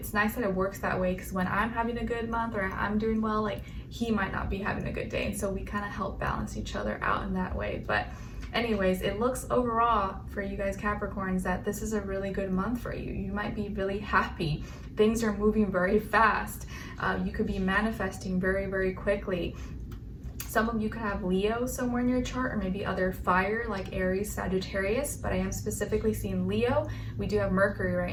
nice that it works that way, because when I'm having a good month or I'm doing well, like he might not be having a good day. And so we kind of help balance each other out in that way. But anyways, it looks overall for you guys Capricorns that this is a really good month for you. You might be really happy. Things are moving very fast. You could be manifesting very, very quickly. Some of you could have Leo somewhere in your chart, or maybe other fire like Aries, Sagittarius, but I am specifically seeing Leo. We do have Mercury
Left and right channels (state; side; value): identical; both; correlation 1.00